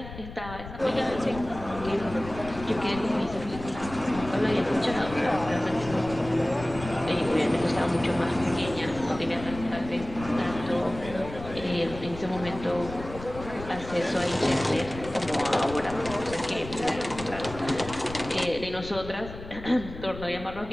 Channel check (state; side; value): noise; left; rumble, 12 dB below the sound